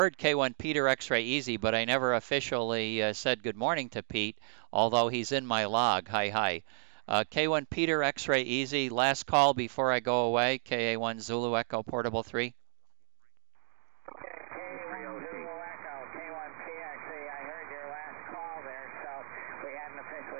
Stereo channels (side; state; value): left; silent; digital silence